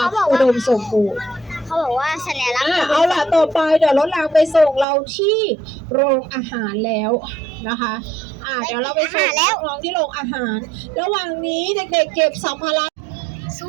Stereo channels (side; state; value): left; drops out; at 4.9 s